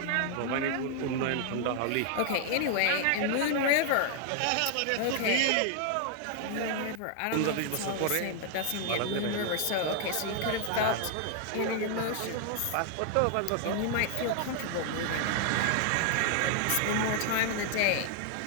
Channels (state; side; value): different; both; correlation 0.00